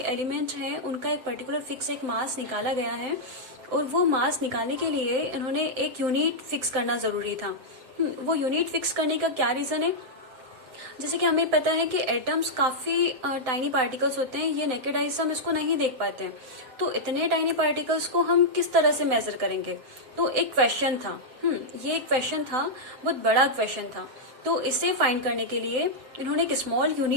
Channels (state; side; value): late; left; 7.8 ms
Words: एलिमेंट हैं उनका एक पर्टिकुलर फिक्स एक मास निकाला गया है, और वो मास निकालने के लिए इन्होंने एक यूनिट फिक्स करना जरूरी था. वो यूनिट फिक्स करने का क्या रीजन है, जैसे कि हमें पता है कि एटम्स काफी टाइनी पार्टिकल्स होते हैं. ये नेकेड आई से हम इसको नहीं देख पाते हैं. तो इतने टाइनी पार्टिकल्स को हम किस तरह से मेजर करेंगे, तो एक क्वेश्चन था. ये एक क्वेश्चन था, बहुत बड़ा क्वेश्चन था. तो इसे फाइंड करने के लिए इन्होंने एक स्मॉल